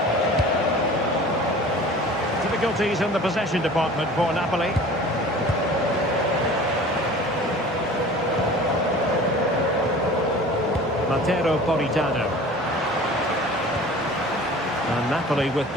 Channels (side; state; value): both; normal; correlation 0.43